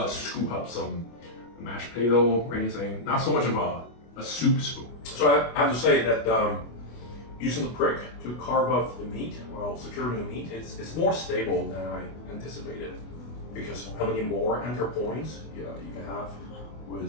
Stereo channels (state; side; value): late; right; 25 ms